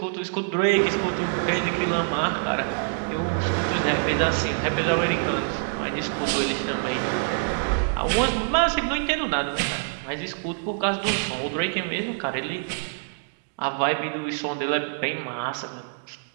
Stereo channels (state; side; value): silent; left; digital silence